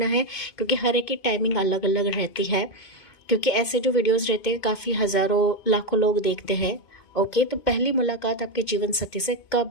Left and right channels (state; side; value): late; right; 2.4 ms